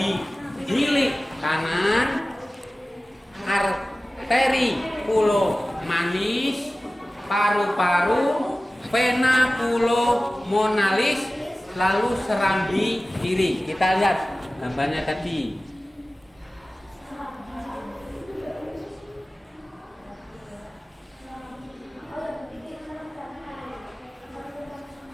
hilik kanan, arteri pulmonalis, paru-paru, vena pulmonalis, lalu serambi kiri. Kita lihat gambarnya tadi.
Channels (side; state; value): both; normal; correlation 0.97